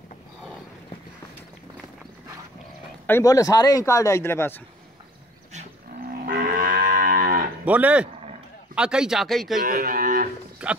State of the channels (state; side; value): normal; both; correlation 0.54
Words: अं बोले सारे ही कार्ड है इधर पास बोले आ कई चा कई कई